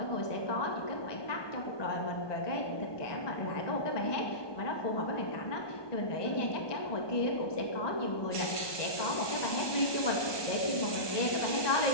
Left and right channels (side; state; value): right; late; 1.2 ms